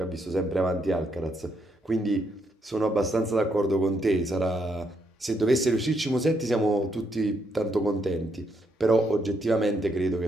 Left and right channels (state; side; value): normal; both; correlation 0.76